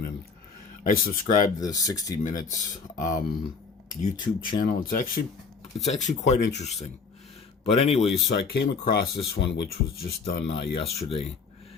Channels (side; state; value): right; quieter; 5.0 dB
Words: and I subscribed to the 60 Minutes YouTube channel. It's actually quite interesting. But anyways, so I came across this one, which was just done yesterday.